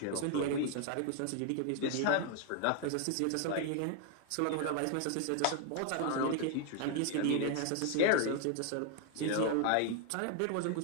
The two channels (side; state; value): both; different; correlation 0.00